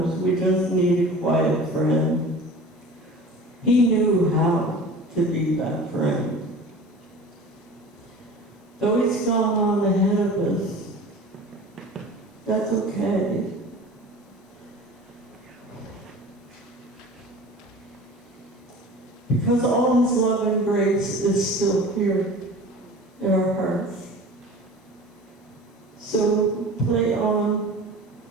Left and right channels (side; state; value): both; normal; correlation 0.39